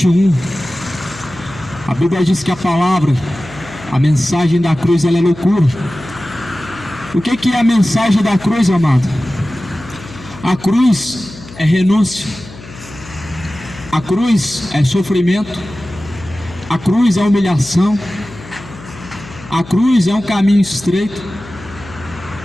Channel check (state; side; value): noise; left; hum, 17 dB below the sound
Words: a Bíblia diz que a palavra, a mensagem da cruz, ela é loucura. O que é a mensagem da cruz, amado? A cruz é renúncia, a cruz é sofrimento, a cruz é humilhação, a cruz é um caminho estreito.